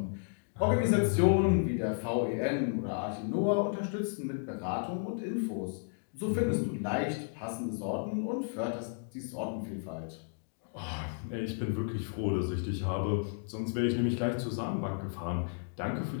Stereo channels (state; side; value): silent; right; digital silence